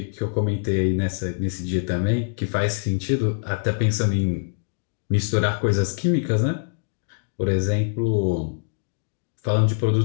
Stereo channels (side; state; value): right; silent; digital silence